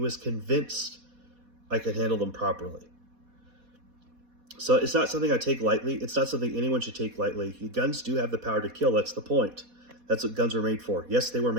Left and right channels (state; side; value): late; left; 4.1 ms